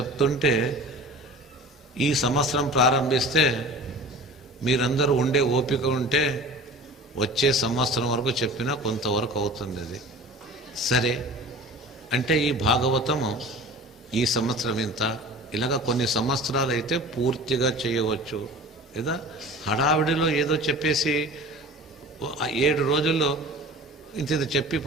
ఈ సంవత్సరం ప్రారంభిస్తే మీరందరూ ఉండే ఓపిక ఉంటే వచ్చే సంవత్సరం వరకు చెప్పినా కొంతవరకు అవుతుంది. అది సరే అంటే ఈ భాగవతము ఈ సంవత్సరం ఇంత, ఇలాగా కొన్ని సంవత్సరాలు అయితే పూర్తిగా చేయవచ్చు. లేదా హడావిడిలో ఏదో చెప్పేసి 7 రోజుల్లో ఇంత చెప్పి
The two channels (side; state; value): both; normal; correlation 0.39